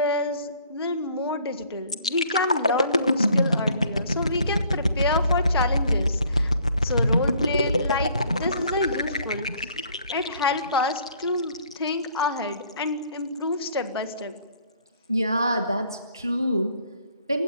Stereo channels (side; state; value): both; inverted; correlation -0.59